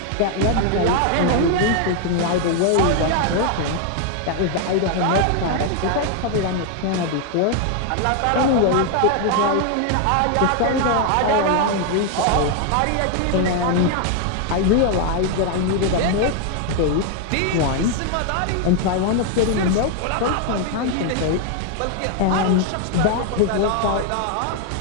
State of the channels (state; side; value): different; both; correlation 0.00